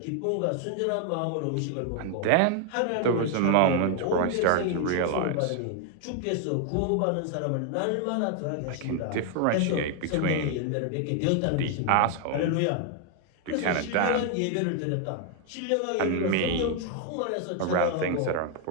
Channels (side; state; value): both; different; correlation 0.00